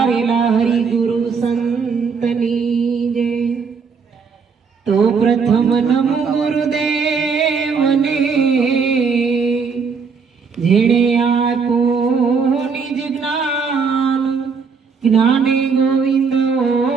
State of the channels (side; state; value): left; quieter; 5.5 dB